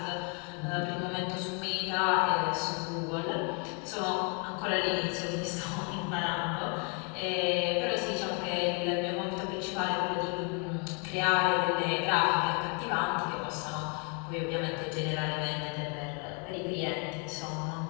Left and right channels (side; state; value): right; quieter; 36.5 dB